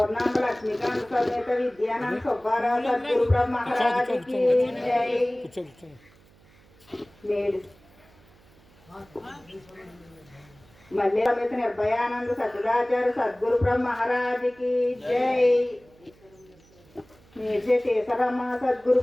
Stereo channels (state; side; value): noise; right; hum, 28 dB below the sound